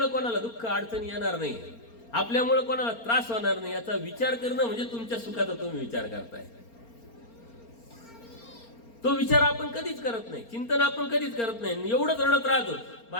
कोणाला दुःख अडचणी येणार नाही. आपल्यामुळे कोणाला त्रास होणार नाही याचा विचार करणं म्हणजे तुमच्या सुखाचा तुम्ही विचार करताय. तो विचार आपण कधीच करत नाही, चिंतन आपण कधीच करत नाही. एवढंच रडत राहतो,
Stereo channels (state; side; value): late; right; 4.3 ms